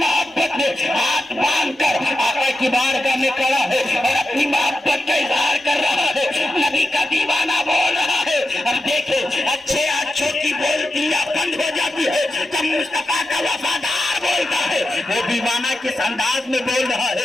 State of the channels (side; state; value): both; normal; correlation 0.90